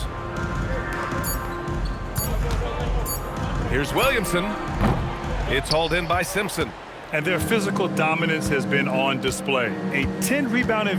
Here's Williamson. It's hauled in by Simpson. And their physical dominance has been on display. A 10-rebound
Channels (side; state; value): both; identical; correlation 1.00